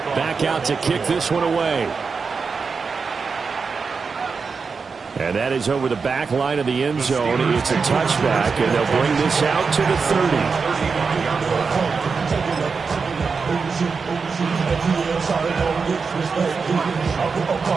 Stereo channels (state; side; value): quieter; left; 5.1 dB